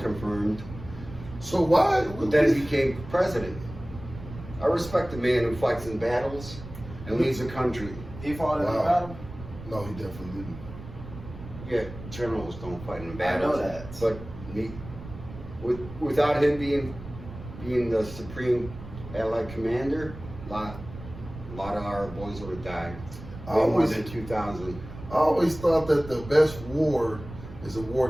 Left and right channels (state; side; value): noise; right; rumble, 13 dB below the sound